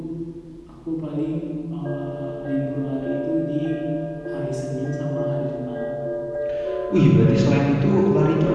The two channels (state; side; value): identical; both; correlation 1.00